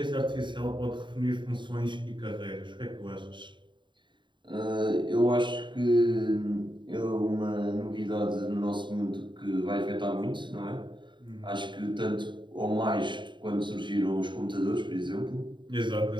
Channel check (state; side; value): late; left; 0.23 ms